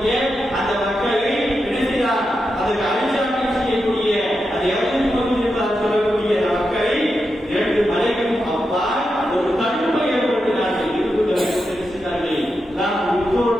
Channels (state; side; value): normal; both; correlation 0.87